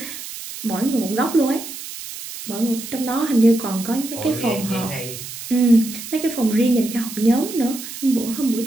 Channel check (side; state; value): right; noise; hiss, 11 dB below the sound